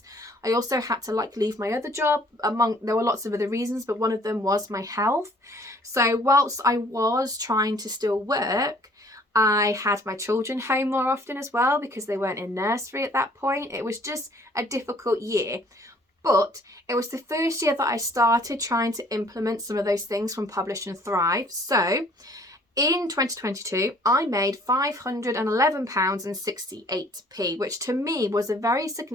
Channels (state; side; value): normal; both; correlation 0.57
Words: I also had to leave my other job. There were lots of other reasons, but one of them was my health. So whilst I was trying to still work, I had my children home more often as well, because they weren't in nursery at that point. It was just a difficult year. But it was the first year that I started trying to implement some of those things from Publish and Thrive. So in 2022, I made £511.68, which to me was a very